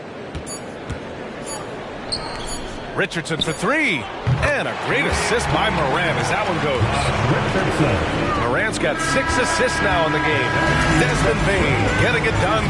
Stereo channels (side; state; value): both; identical; correlation 1.00